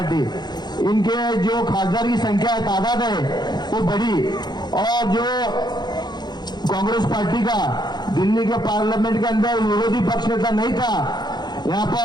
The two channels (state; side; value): late; right; 0.21 ms